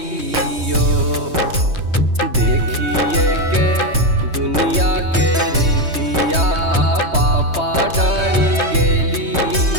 देखिए के दुनिया के रीतिया पापा डरी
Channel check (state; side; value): late; left; 3.2 ms